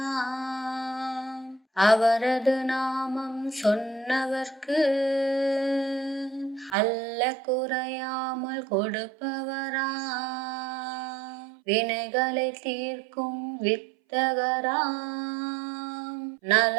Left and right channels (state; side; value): drops out; left; at 6.8 s